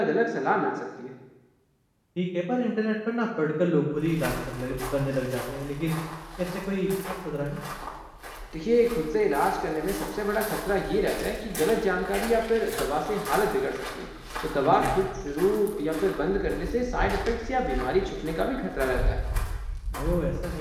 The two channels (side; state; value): both; identical; correlation 1.00